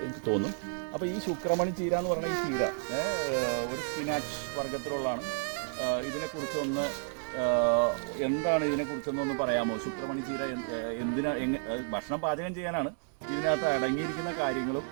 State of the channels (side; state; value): left; silent; digital silence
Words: തോന്നും. അപ്പോൾ ഈ ശുക്രമണി ചീര എന്ന് പറയുന്ന ഈ ചീര ഒരു സ്പിനാച്ച് വർഗത്തിലുള്ളതാണ്. ഇതിനെക്കുറിച്ചൊന്ന് എന്താണ് ഇതിനെക്കുറിച്ചൊന്നൊന്ന് പറയാമോ? ശുക്രമണി ചീര എന്തിനാ, ഭക്ഷണം പാചകം ചെയ്യാനാണ്. ഇതിനകത്ത് അടങ്ങിയിരിക്കുന്ന കാര്യങ്ങളും